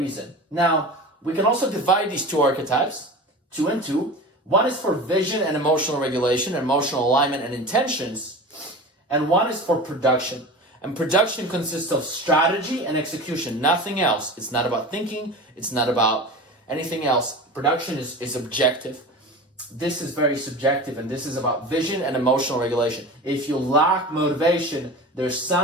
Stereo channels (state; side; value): normal; both; correlation 0.32